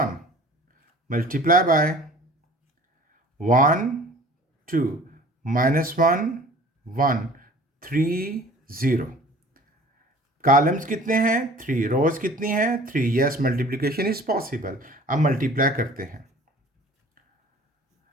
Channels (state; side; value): normal; both; correlation 0.47